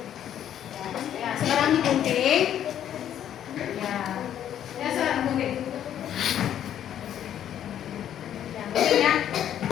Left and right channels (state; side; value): quieter; right; 10.4 dB